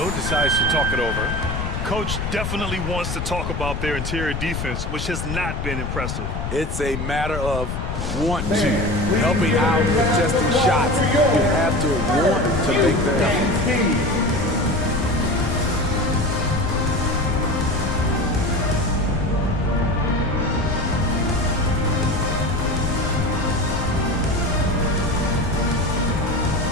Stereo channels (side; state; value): left; noise; rumble, 4 dB below the sound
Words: decides to talk it over. Coach definitely wants to talk about their interior defense, which has not been impressive. It's a matter of want to, helping out, contesting shots. You have to want to make the effort.